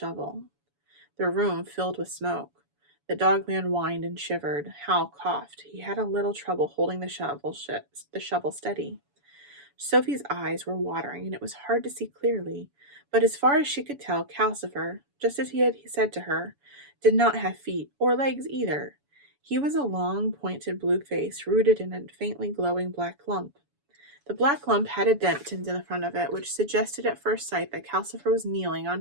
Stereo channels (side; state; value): left; late; 7.0 ms